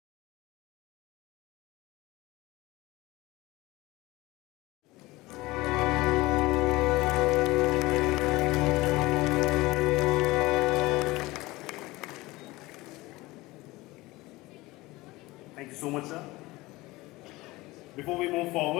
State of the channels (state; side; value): quieter; right; 20.4 dB